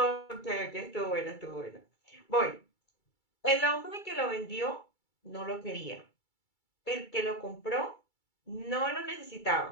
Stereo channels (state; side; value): late; right; 2.3 ms